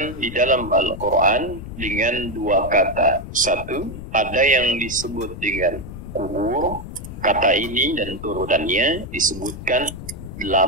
di dalam Al-Quran dengan dua kata. Satu, ada yang disebut dengan kubur. Kata ini dan turunannya disebutkan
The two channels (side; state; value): left; noise; rumble, 11 dB below the sound